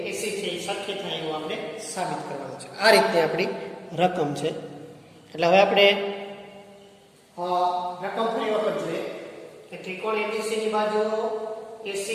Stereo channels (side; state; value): both; identical; correlation 1.00